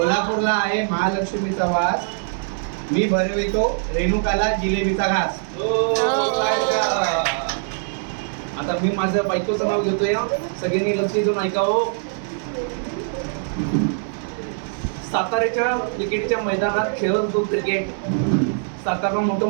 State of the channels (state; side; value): silent; left; 59 dB below the other